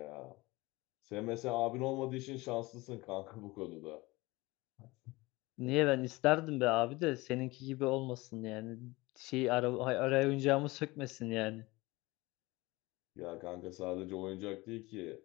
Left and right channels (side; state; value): right; quieter; 21.9 dB